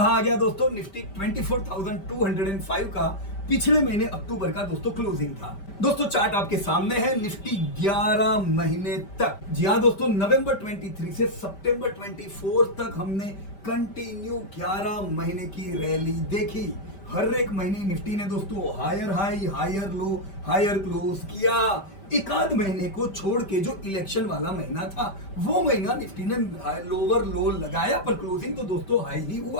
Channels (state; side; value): late; right; 5.1 ms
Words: आ गया दोस्तों, निफ्टी 24,205 का पिछले महीने अक्टूबर का दोस्तों क्लोजिंग था। दोस्तों चार्ट आपके सामने है, निफ्टी 11 महीने तक, जी हाँ दोस्तों, नवंबर 23 से सितंबर 24 तक हमने कंटिन्यू 11 महीने की रैली देखी। हर एक महीने निफ्टी ने दोस्तों higher high higher low higher close किया। एक आध महीने को छोड़ के जो इलेक्शन वाला महीना था वो महीना निफ्टी ने लोअर लो लगाया, पर क्लोजिंग तो दोस्तों हाई ही